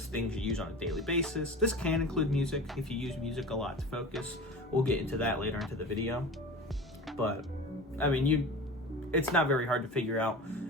things you use on a daily basis. This can include music if you use music a lot to focus. We'll get into that later into the video. But I mean, it's not very hard to figure out.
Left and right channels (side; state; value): both; normal; correlation 0.34